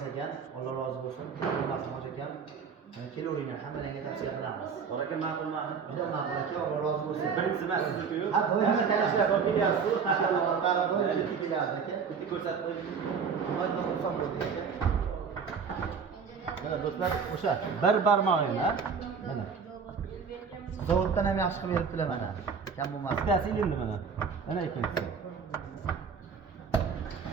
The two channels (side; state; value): left; quieter; 6.0 dB